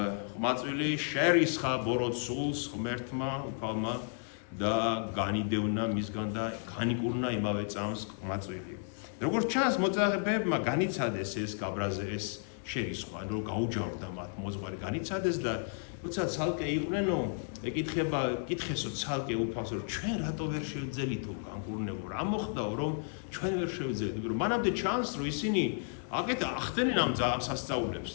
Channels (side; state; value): right; silent; 56 dB below the other